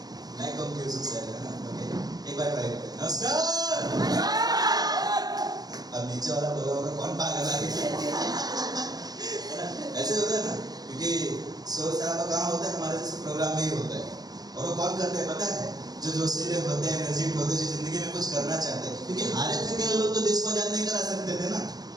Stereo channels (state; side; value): late; left; 0.19 ms